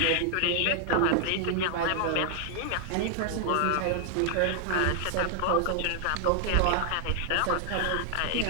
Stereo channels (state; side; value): different; both; correlation 0.00